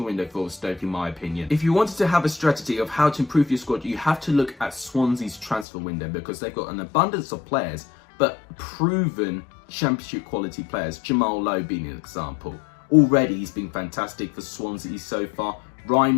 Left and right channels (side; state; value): right; drops out; at 5.7 s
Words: window for Stoke, in my opinion. If you wanted to have a strategy of how to improve your squad, you have to look at Swansea's transfer window, because they've got an abundance of players, but proven championship quality players. Jamal Lowe being an example. Already, he's been fantastic for Swansea so far. Ryan